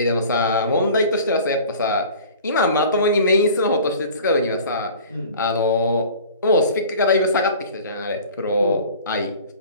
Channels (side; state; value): both; inverted; correlation -0.44